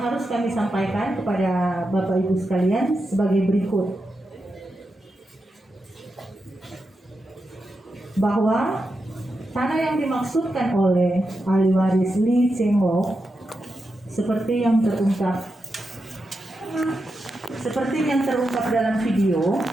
harus kami sampaikan kepada Bapak Ibu sekalian sebagai berikut. Bahwa tanah yang dimaksudkan oleh ahli waris Li Cengho seperti yang terungkap dalam video,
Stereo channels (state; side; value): normal; both; correlation 0.88